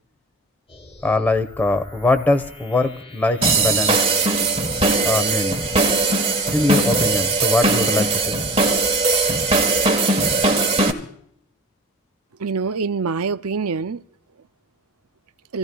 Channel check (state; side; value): normal; both; correlation 0.38